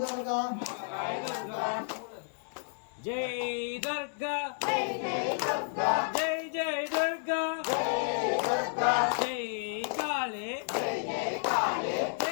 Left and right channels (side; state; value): right; silent; digital silence